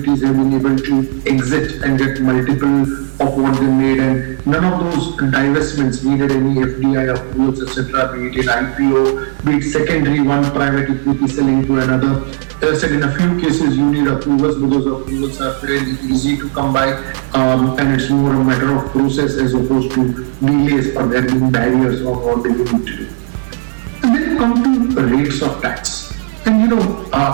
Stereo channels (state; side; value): silent; left; digital silence